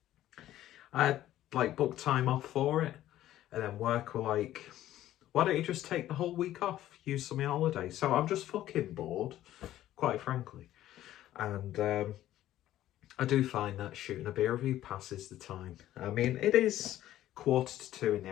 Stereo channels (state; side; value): quieter; right; 13.4 dB